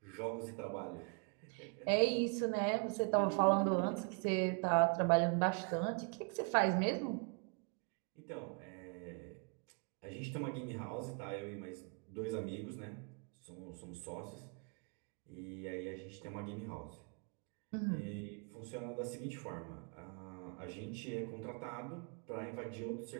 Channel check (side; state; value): left; quieter; 38.5 dB